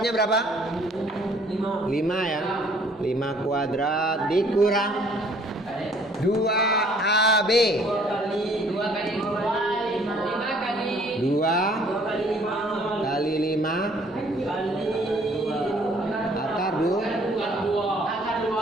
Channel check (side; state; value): both; normal; correlation 0.59